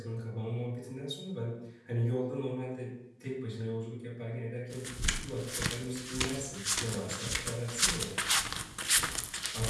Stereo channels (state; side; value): identical; both; correlation 1.00